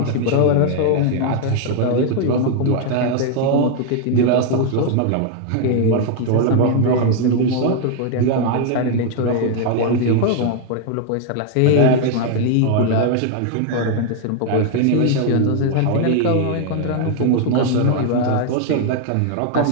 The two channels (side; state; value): both; different; correlation 0.00